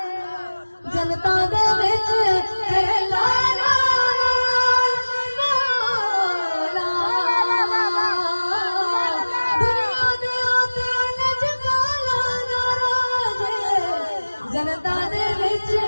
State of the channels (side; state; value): both; inverted; correlation -1.00